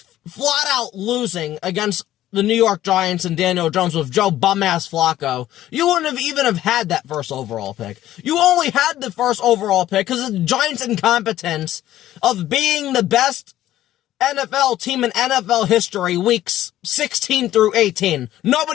flat out losing against the New York Giants and Daniel Jones with Joe bum-ass Flacco, you wouldn't have even have had that first overall pick. You only had the first overall pick because of the Giants' incompetence of being the best NFL team in NFL history weeks 16 through 18.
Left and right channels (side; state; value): right; quieter; 13.6 dB